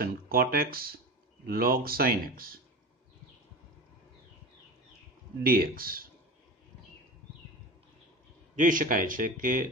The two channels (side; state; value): both; normal; correlation 0.30